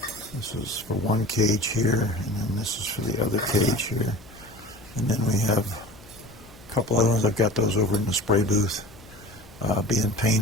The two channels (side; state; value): left; noise; hum, 22 dB below the sound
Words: is for one cage here, and then this is for the other cage here. And then we have a couple other ones. I've got those over in the spray booth being